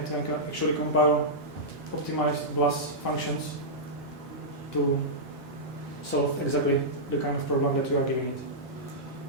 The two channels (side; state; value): both; normal; correlation -0.12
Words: can actually compile optimized BLAS functions to solve exactly the kind of problem that you are giving it.